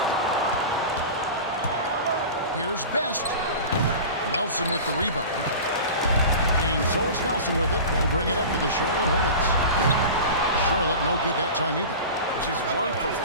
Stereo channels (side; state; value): both; inverted; correlation -0.33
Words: Here's Best. Nelson with the rebound. And so it's Nelson with it. They'll bring it up for the Charlotte Hornets. Charlotte no good that time either. Just 1 for